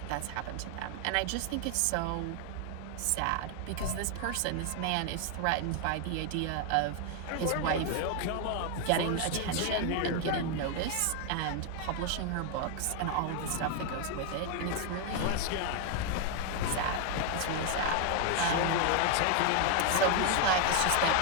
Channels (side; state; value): both; different; correlation 0.01